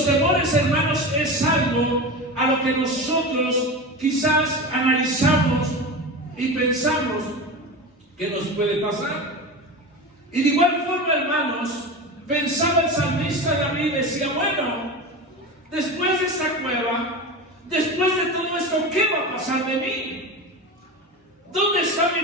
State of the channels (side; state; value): both; normal; correlation 0.26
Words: temores, hermanos, es algo a lo que nosotros quizás analizamos y pensamos que nos puede pasar. Y de igual forma, hermanos, pensaba el salmista David y decía, bueno, después de esta cueva, después de todo esto, ¿qué va a pasar de mí? ¿Dónde está